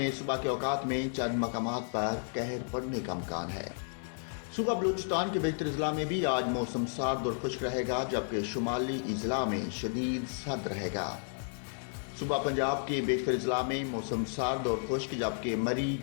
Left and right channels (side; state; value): right; silent; digital silence